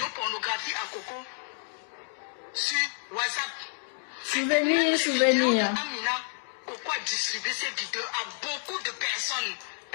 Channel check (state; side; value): silent; right; digital silence